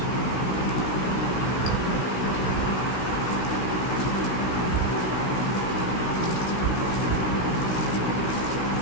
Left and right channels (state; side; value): late; right; 16 ms